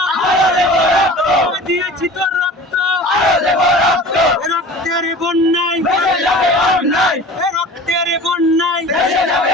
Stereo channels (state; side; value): normal; both; correlation 0.40